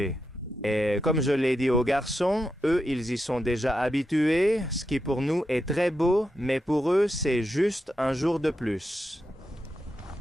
Et comme je l'ai dit aux garçons, eux ils y sont déjà habitués, ce qui pour nous est très beau, mais pour eux c'est juste un jour de plus.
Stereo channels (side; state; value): both; normal; correlation 0.86